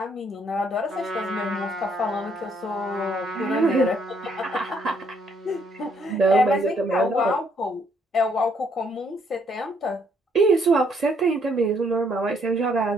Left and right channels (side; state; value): both; normal; correlation 0.69